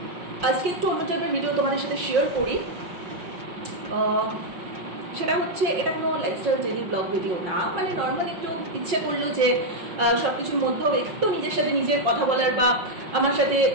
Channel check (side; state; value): left; late; 5.5 ms